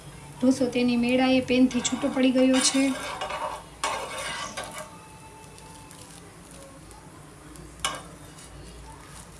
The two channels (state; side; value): identical; both; correlation 1.00